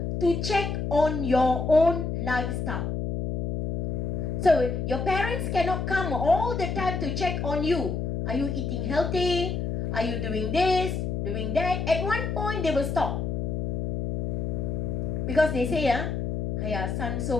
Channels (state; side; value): noise; left; hum, 2 dB below the sound